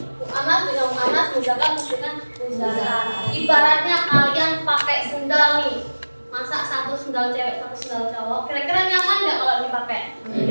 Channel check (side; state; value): both; inverted; correlation -1.00